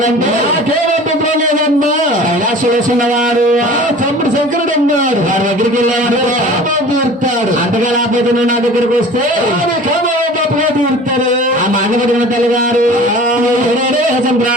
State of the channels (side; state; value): both; normal; correlation 0.42